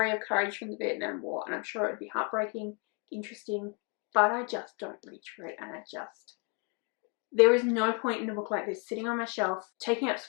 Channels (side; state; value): right; quieter; 32.9 dB